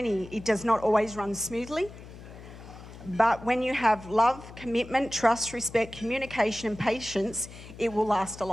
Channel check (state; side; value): noise; left; hum, 16 dB below the sound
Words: It does not always run smoothly. But when you have love, commitment, trust, respect, communication and patience, it will last a